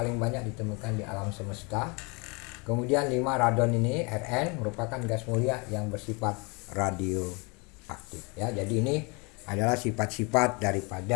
banyak ditemukan di alam semesta. Kemudian 5, radon ini Rn merupakan gas mulia yang bersifat radioaktif ya. Jadi ini adalah sifat-sifat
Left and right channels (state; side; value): quieter; right; 30.3 dB